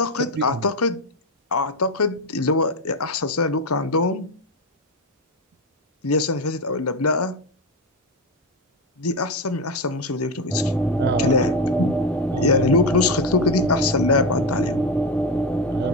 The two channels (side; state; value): both; normal; correlation 0.14